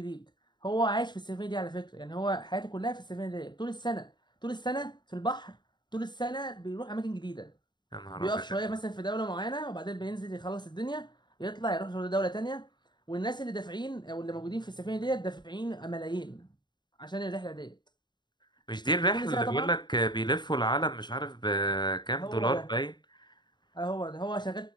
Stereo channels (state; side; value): late; right; 0.21 ms